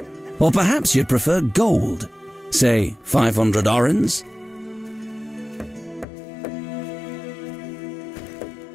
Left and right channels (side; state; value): right; drops out; at 6.1 s